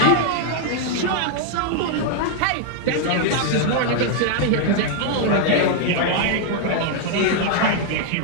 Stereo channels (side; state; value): both; different; correlation 0.00